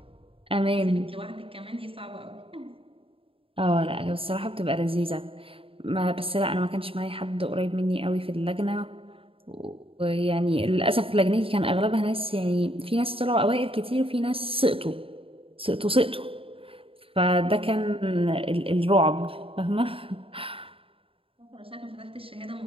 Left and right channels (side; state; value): left; late; 0.27 ms